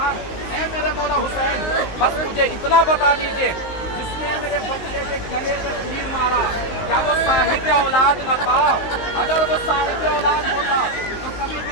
ऐ मेरे मौला हुसैन, बस मुझे इतना बता दीजिए, जिसने मेरे बच्चे के गले में तीर मारा क्या वो साहिब औलाद न था? अगर वो साहिब औलाद होता तो कभी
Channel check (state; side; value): late; right; 19 ms